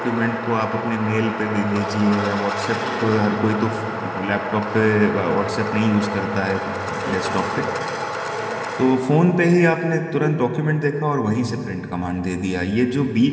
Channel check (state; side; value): identical; both; correlation 1.00